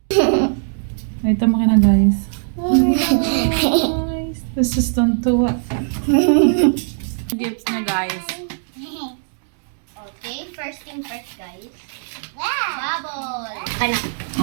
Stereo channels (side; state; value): left; silent; digital silence